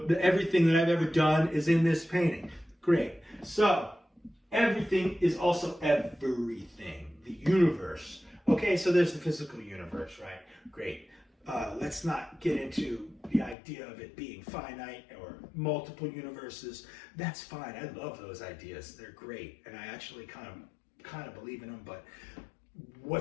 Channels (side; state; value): right; drops out; at 13.6 s